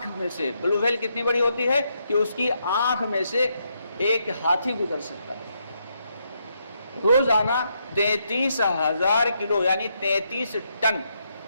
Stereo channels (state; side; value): inverted; both; correlation -0.78